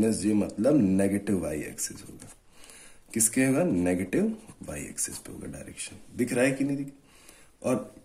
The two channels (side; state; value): both; identical; correlation 1.00